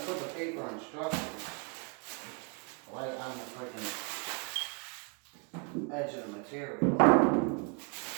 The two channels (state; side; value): quieter; left; 33.7 dB